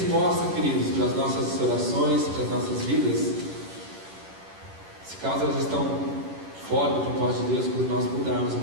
queridos, para as nossas orações, para as nossas vidas, se caso elas estão fora do propósito de Deus, quando nós mudarmos a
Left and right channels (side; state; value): left; late; 11 ms